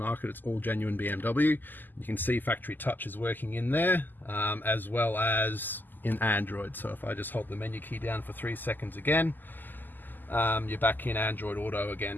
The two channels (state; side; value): late; right; 0.088 ms